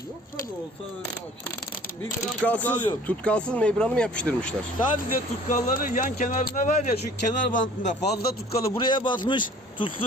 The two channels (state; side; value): normal; both; correlation 0.50